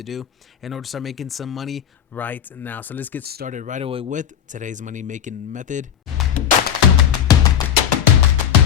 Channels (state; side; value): quieter; right; 9.3 dB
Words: do in order to start making some money right now. So let's get started right away with today's money making method.